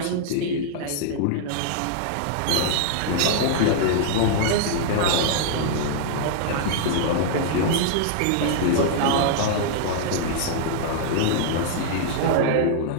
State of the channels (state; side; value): different; both; correlation -0.01